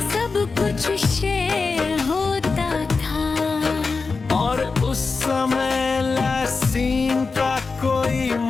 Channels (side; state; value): right; quieter; 4.4 dB